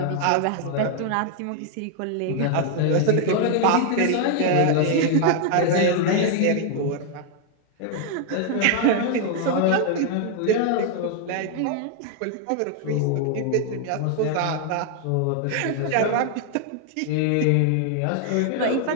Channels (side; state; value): both; different; correlation 0.00